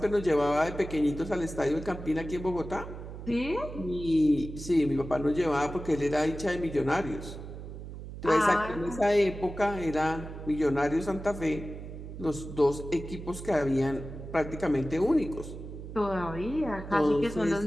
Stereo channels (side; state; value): right; noise; hum, 11 dB below the sound